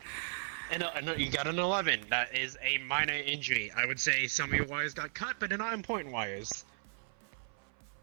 And you got an 11. That is a minor injury. I would say some of your wires got cut, but they're not important wires.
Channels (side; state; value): left; silent; 54 dB below the other